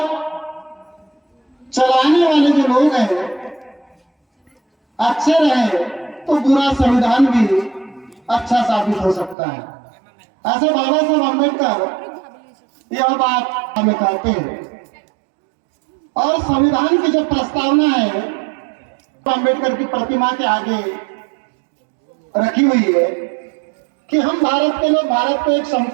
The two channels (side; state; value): left; drops out; at 9.3 s